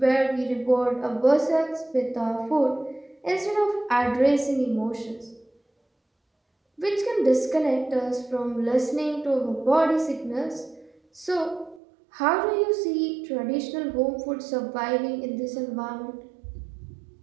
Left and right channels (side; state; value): left; drops out; at 11.8 s